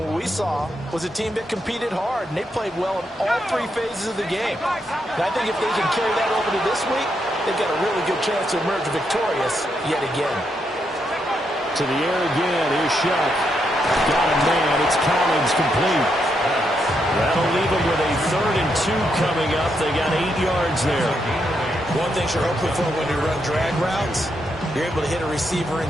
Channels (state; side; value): normal; both; correlation 0.80